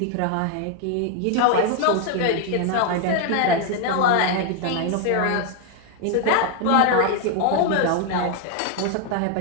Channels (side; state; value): both; different; correlation 0.00